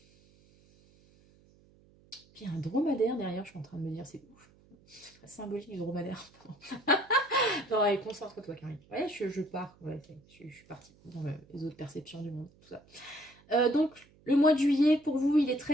Puis il y a un dromadaire derrière, je suis en train de me dire, c'est ouf, c'est très symbolique du dromadaire. Non, allez, concentre-toi, Karine. Ouais, je pars, ouais, je suis partie dans les autres perceptions du monde, tout ça. Donc, le mois de juillet, pour vous, il est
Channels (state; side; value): noise; right; hum, 29 dB below the sound